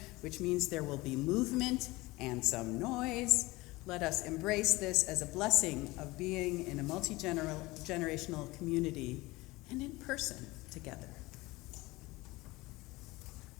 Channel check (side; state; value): right; quieter; 21.1 dB